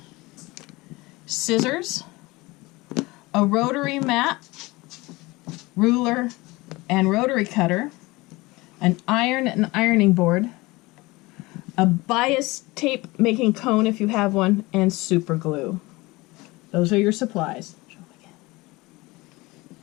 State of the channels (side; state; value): right; quieter; 22.1 dB